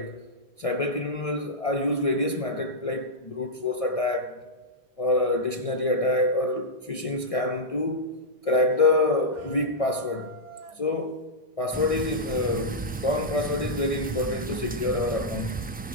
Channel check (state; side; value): normal; both; correlation -0.09